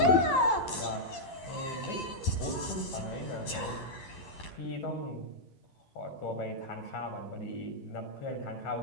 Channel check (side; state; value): right; late; 12 ms